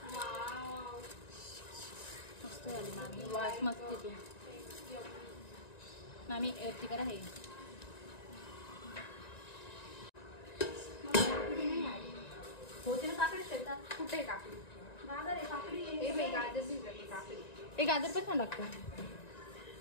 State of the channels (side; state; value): right; late; 1.9 ms